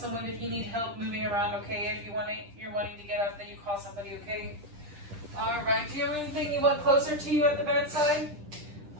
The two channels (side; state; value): left; late; 10 ms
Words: if you need help moving around, okay? If you're wanting to get up, then you call somebody, okay? All right, do you have anything you want closer to you at the bedside?